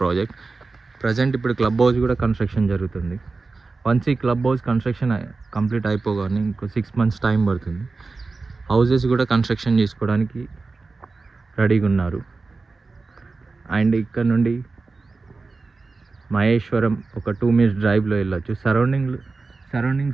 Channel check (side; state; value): left; quieter; 3.9 dB